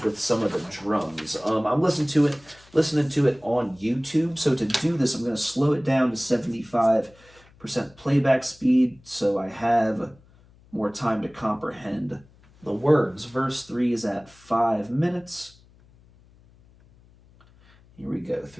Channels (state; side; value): noise; left; hum, 28 dB below the sound